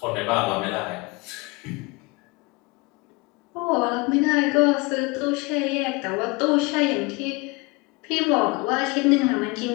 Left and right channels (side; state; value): right; quieter; 26.7 dB